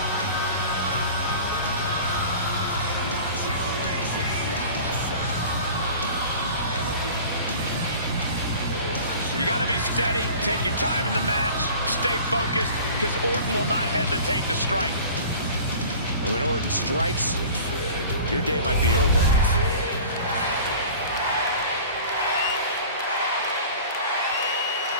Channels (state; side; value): inverted; both; correlation -0.42